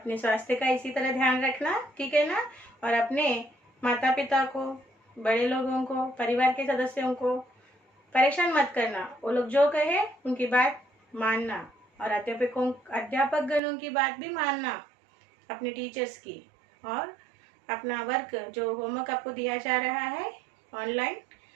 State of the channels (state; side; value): drops out; left; at 13.6 s